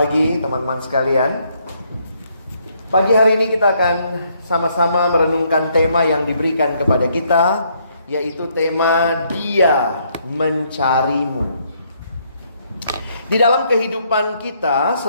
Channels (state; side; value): inverted; both; correlation -0.71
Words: teman-teman sekalian. Pagi hari ini kita akan sama-sama merenungkan tema yang diberikan kepada kita, yaitu tema Dia Mencarimu. Di dalam kehidupan kita